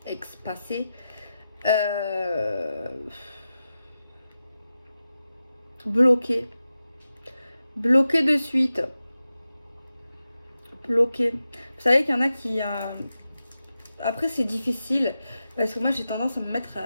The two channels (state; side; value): inverted; both; correlation -0.91